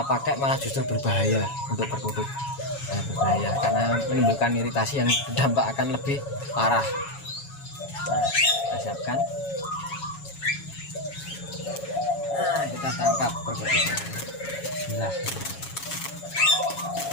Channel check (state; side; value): late; right; 7.2 ms